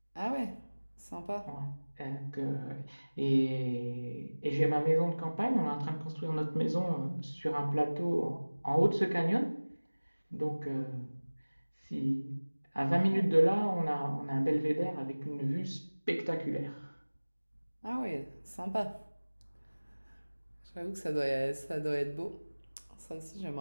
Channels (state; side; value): inverted; both; correlation -1.00